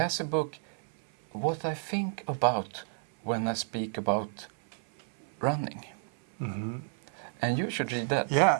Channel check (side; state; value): left; silent; 57 dB below the other